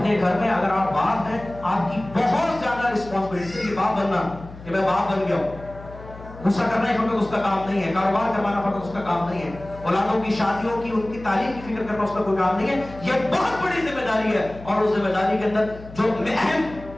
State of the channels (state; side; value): noise; left; hum, 16 dB below the sound